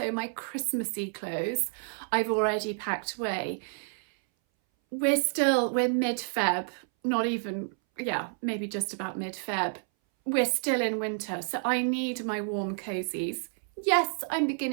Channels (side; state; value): left; silent; 58 dB below the other